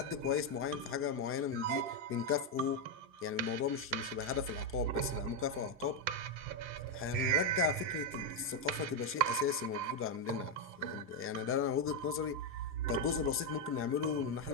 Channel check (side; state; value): both; normal; correlation 0.03